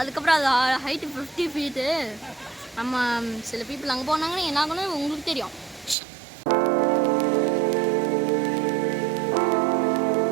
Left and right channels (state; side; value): drops out; left; at 6.0 s